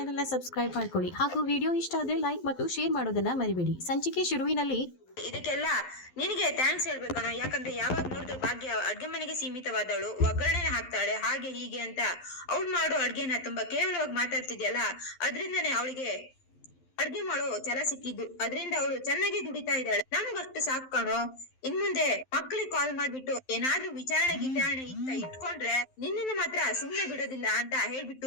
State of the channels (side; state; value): right; late; 11 ms